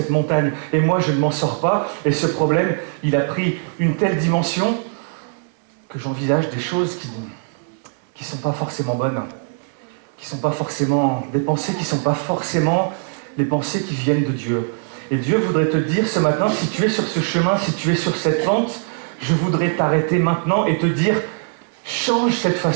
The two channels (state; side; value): silent; left; 59 dB below the other